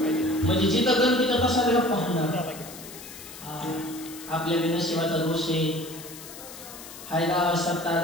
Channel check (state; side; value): noise; left; hiss, 14 dB below the sound